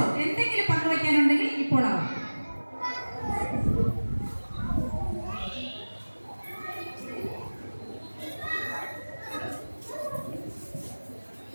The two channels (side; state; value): both; inverted; correlation -1.00